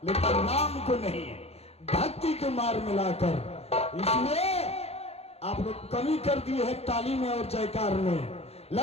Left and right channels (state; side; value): late; right; 0.30 ms